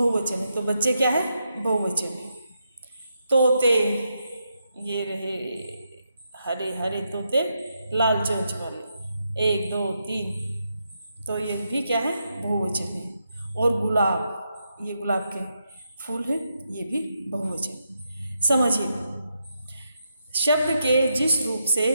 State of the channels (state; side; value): inverted; both; correlation -0.83